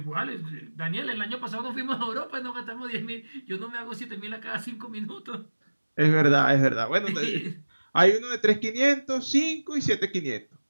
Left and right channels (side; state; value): both; inverted; correlation -1.00